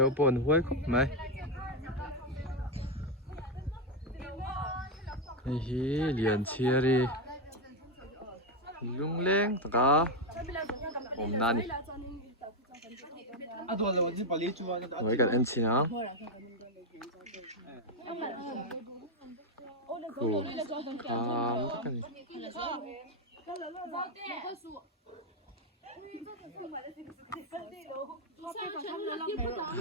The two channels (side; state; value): both; normal; correlation 0.05